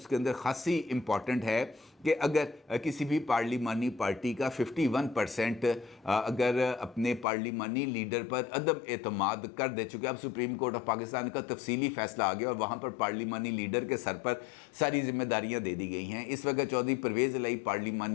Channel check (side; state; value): right; drops out; at 7.2 s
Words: अंदर खासी इम्पॉर्टेंट है कि अगर किसी भी पार्लिमानी पार्टी का 51% अगर अपने पार्लिमानी लीडर पर अदम एतमाद कर दे, चुके अब सुप्रीम कोर्ट ऑफ पाकिस्तान का तफसीली फ़ैसला आ गया और वहाँ पर पार्लिमानी लीडर के सर पर सारी जिम्मेदारियाँ दे दी गई हैं। इस वक्त चौधरी परवेज़ इलाही